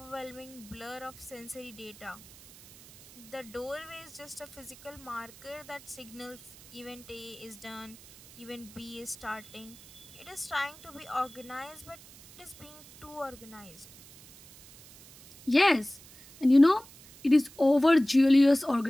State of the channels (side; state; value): right; noise; hiss, 21 dB below the sound